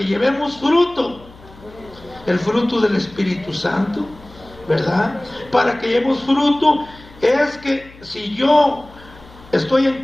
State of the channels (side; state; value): left; noise; hum, 22 dB below the sound